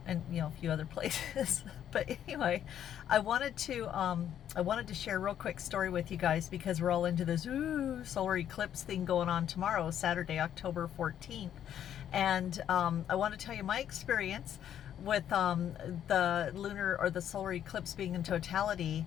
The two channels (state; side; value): quieter; right; 10.1 dB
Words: a few other places. But anyway, I wanted to share a real quick story with you guys because we're all into this solar eclipse thing going on tomorrow, Saturday, October 14th. And I want to tell you my experience with the lunar or the solar eclipse being in totality,